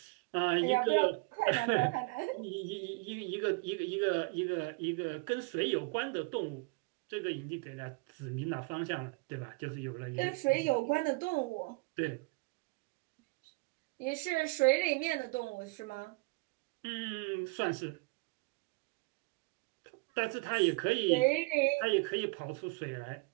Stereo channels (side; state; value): left; quieter; 28.0 dB